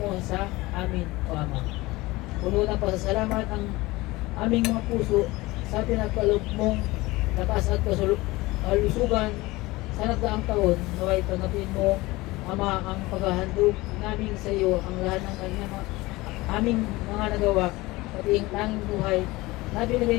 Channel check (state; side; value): quieter; right; 20.7 dB